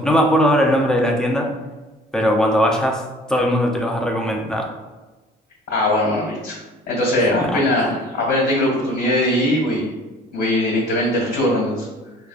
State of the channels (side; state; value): both; normal; correlation 0.51